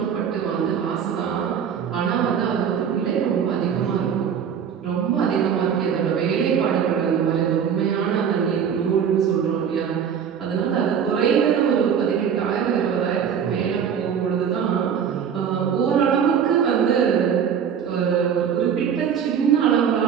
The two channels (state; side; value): quieter; left; 7.8 dB